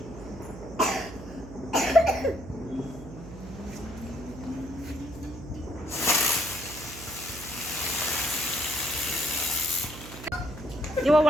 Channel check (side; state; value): right; noise; hum, 13 dB below the sound